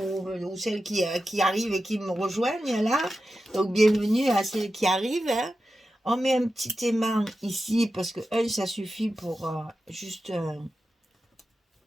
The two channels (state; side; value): normal; both; correlation 0.92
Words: celles qui arrivent et qui me rejoignent là. Donc bienvenue à celles qui arrivent. Hein. On met un petit aimant ici parce que ça suffit pour juste